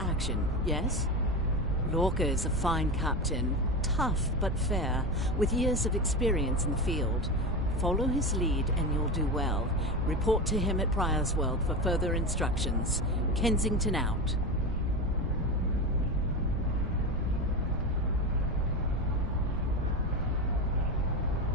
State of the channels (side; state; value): both; normal; correlation 0.21